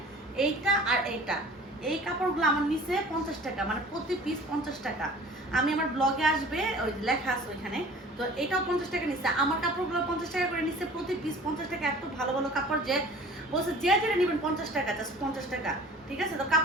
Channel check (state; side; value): normal; both; correlation 0.46